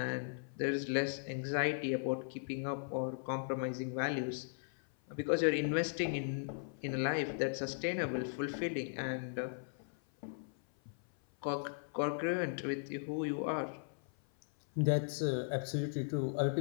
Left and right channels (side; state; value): right; silent; 53 dB below the other